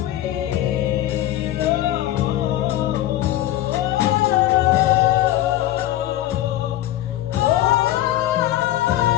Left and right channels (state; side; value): quieter; right; 13.9 dB